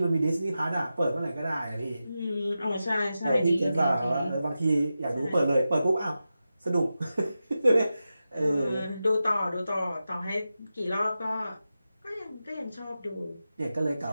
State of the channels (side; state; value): both; inverted; correlation -0.92